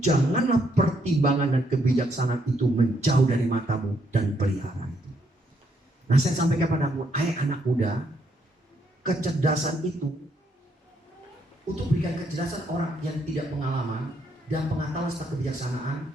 janganlah pertimbangan dan kebijaksanaan itu menjauh dari matamu dan pelihara itu. Nah, saya sampaikan padamu, hai anak muda, kecerdasan itu untuk berikan kecerdasan orang yang tidak pengalaman dan pengetahuan serta kebijaksanaan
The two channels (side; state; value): both; normal; correlation 0.73